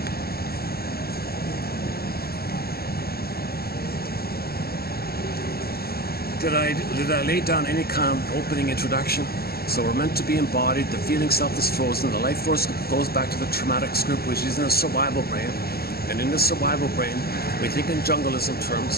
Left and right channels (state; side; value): late; right; 0.45 ms